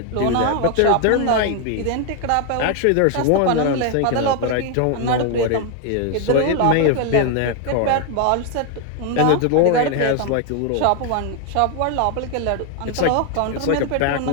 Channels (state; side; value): different; both; correlation 0.01